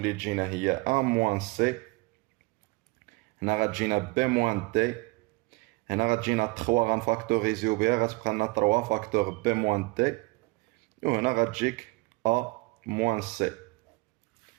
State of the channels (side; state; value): left; quieter; 25.7 dB